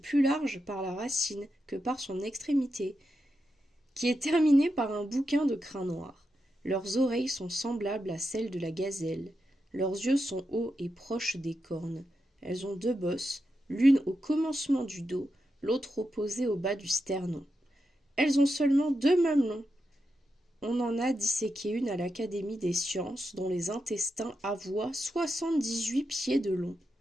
large par la racine que par son extrémité, qui est terminée par un bouquin de crin noir. Leurs oreilles sont semblables à celles de la gazelle. Leurs yeux sont hauts et proches des cornes. Elles ont 2 bosses, l'une au commencement du dos, l'autre opposée au bas du sternon. Elles ont seulement 2 mamelons. On en a disséqué une à l'Académie des sciences, dont les intestins avoient 78 pieds de long.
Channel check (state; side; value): normal; both; correlation 0.87